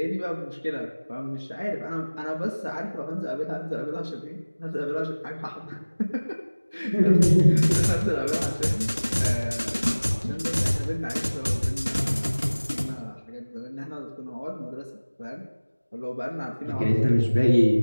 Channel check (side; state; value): both; inverted; correlation -1.00